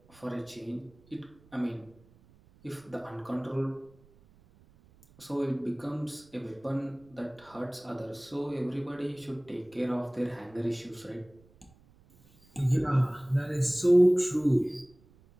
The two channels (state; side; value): noise; right; rumble, 28 dB below the sound